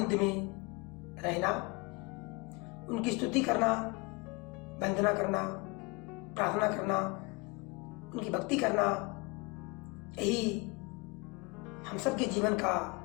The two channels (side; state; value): right; quieter; 27.6 dB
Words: में रहना, उनकी स्तुति करना, वंदना करना, प्रार्थना करना, उनकी भक्ति करना, यही हम सबके जीवन का